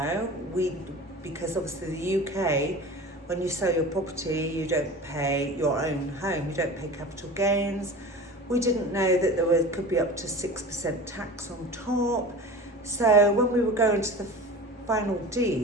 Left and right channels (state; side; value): normal; both; correlation 0.35